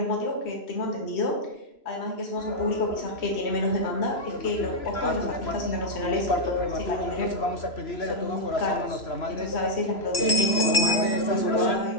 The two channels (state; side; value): late; right; 3.0 ms